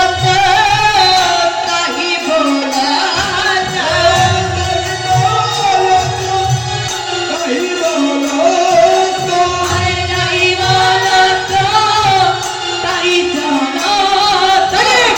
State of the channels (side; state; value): both; identical; correlation 1.00